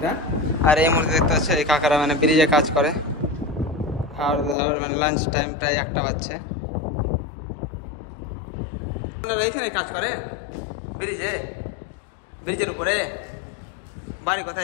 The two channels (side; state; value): right; drops out; at 4.5 s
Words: আর এই মুহূর্তে দেখতে পাচ্ছ এই কাকারা মানে ব্রিজে কাজ করে। আর মানে লাঞ্চ টাইম প্রায় 1টা বাজছে। আপনারা এইখানে কাজ করেন ব্রিজে, ব্রিজের উপরে? বাড়ি